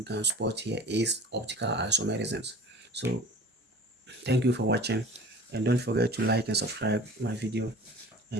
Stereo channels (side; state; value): both; normal; correlation 0.43